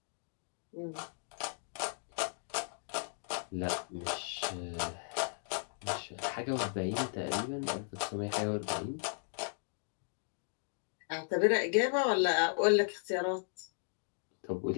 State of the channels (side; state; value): right; silent; digital silence